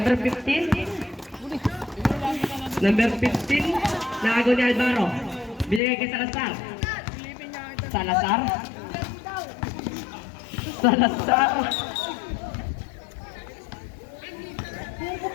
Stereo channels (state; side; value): drops out; right; at 5.8 s